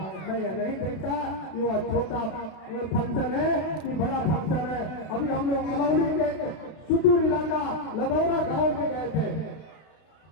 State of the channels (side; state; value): right; late; 32 ms